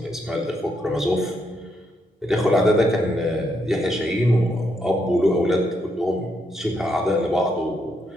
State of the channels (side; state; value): both; normal; correlation 0.78